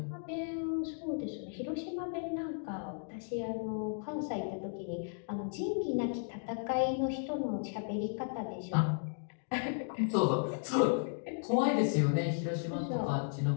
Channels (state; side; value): silent; right; digital silence